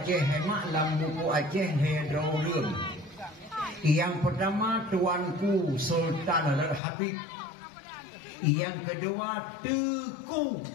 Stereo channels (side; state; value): right; drops out; at 6.8 s